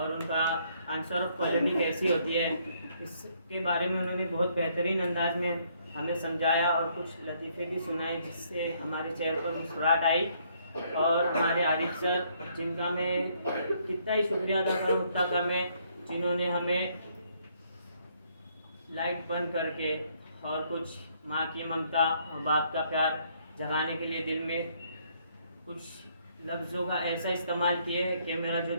उनका आंसर ऑफ क्वालिटी कैसी होती है। इसके बारे में उन्होंने बहुत बेहतरीन अंदाज में हमें समझाया और कुछ लतीफ़े भी सुनाए जिससे हमारे चेहरे पर मुस्कुराहट आई। और हमारे आरिफ सर, जिनका मैं कितना ही शुक्रिया अदा करूँ उतना कम है, जिन्होंने हमें लाइट बंद करके और कुछ माँ की ममता और बाप का प्यार जगाने के लिए दिल में कुछ लफ्ज़ों का ऐसा इस्तेमाल किए कि मेरा जो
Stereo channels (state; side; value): inverted; both; correlation -0.68